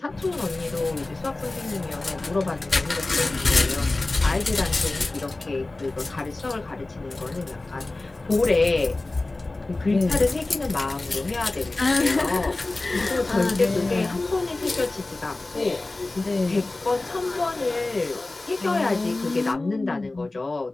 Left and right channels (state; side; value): quieter; right; 3.0 dB